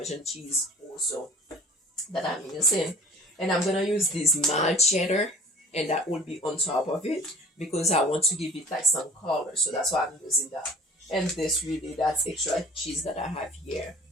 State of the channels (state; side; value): normal; both; correlation 0.45